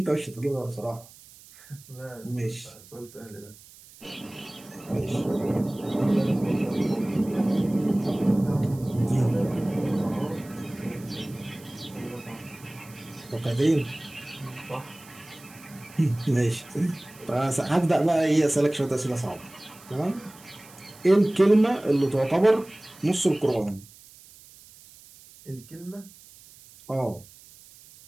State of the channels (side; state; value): right; noise; hiss, 22 dB below the sound